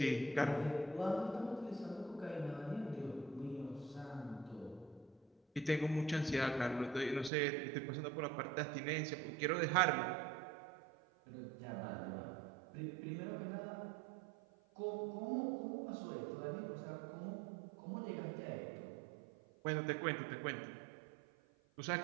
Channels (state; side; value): drops out; left; at 7.3 s